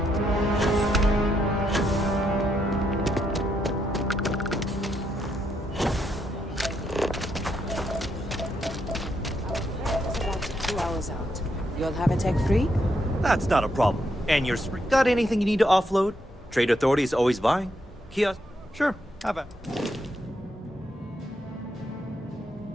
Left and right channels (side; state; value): both; normal; correlation 0.78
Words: About 2 hours out. You'll have a tech free? That's not a problem. And you're got anything you need to offload? Trade Authority is always buying. Kiosk? Sure, have it.